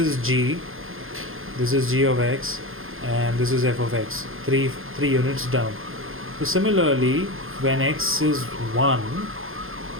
g of x, and this is f of x, 3 units down. So similarly, when x is 1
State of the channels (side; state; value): left; late; 0.60 ms